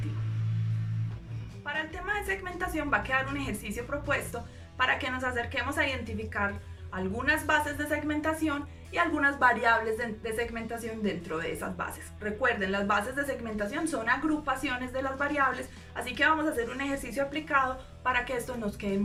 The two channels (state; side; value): identical; both; correlation 1.00